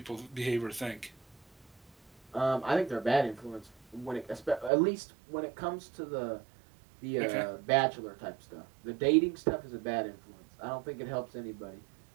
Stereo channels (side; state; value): left; drops out; at 4.7 s